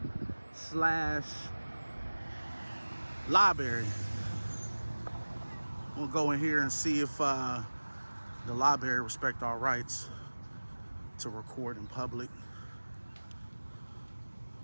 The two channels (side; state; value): both; inverted; correlation -1.00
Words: / library. We'll go in here and see if the library respect our rights to record in public.